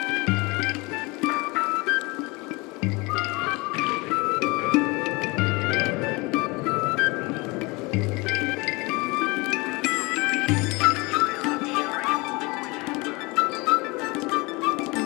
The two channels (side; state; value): right; quieter; 25.2 dB